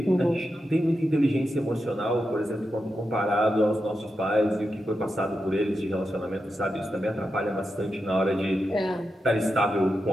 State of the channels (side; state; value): both; normal; correlation 0.88